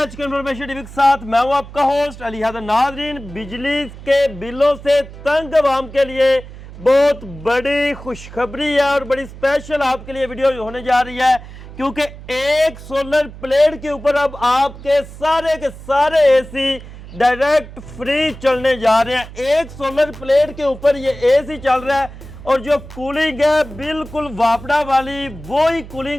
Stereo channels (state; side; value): noise; right; hum, 15 dB below the sound